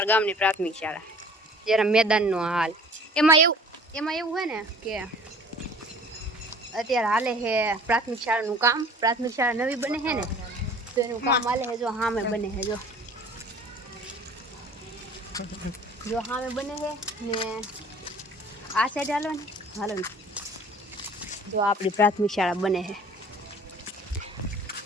ગામની પ્રાથમિક શાળા, જરા મેદાનનો હાલ. એમાં એવું છે ને કે અત્યારે હાલે છે પ્રાથમિક શાળાનું કામ. પ્રાથમિક શાળા નવી બને છે ને તો એનું કામ હાલે છે. જો સામે બને છે, જો સામે બને છે ને આ સાઈડ હાલો ને જો આપણી પ્રાથમિક શાળા બને છે.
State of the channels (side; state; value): both; normal; correlation 0.48